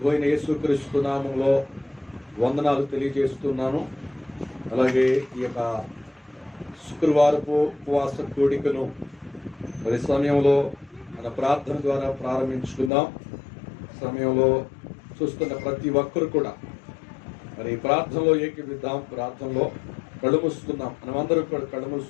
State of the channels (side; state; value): right; drops out; at 12.9 s